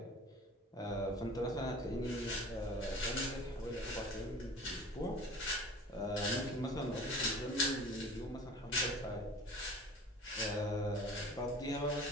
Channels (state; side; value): normal; both; correlation 0.42